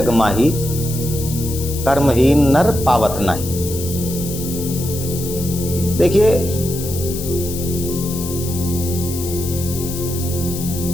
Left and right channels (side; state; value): left; noise; hiss, 9 dB below the sound